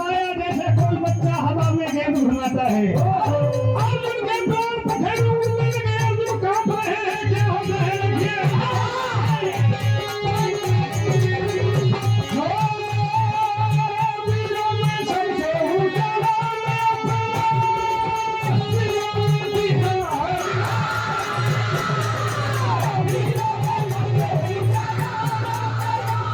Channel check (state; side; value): identical; both; correlation 1.00